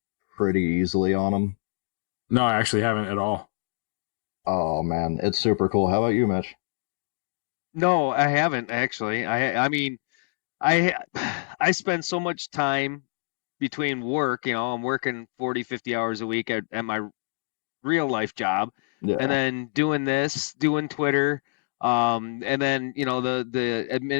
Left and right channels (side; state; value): right; silent; digital silence